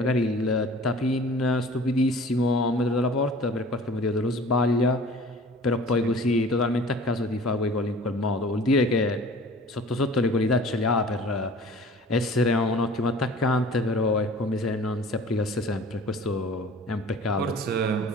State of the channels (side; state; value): both; normal; correlation 0.45